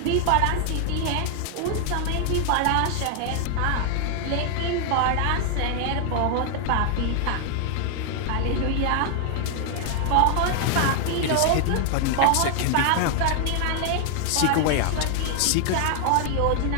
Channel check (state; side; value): different; both; correlation 0.00